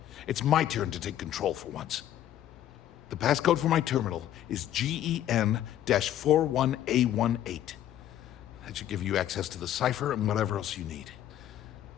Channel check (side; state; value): right; quieter; 11.7 dB